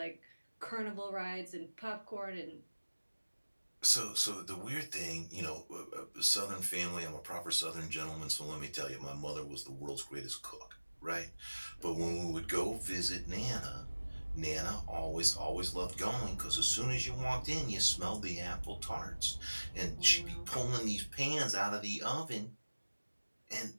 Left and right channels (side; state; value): both; inverted; correlation -1.00